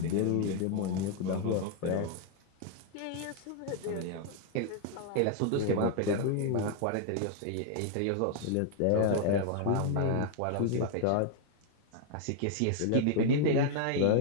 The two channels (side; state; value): both; different; correlation 0.00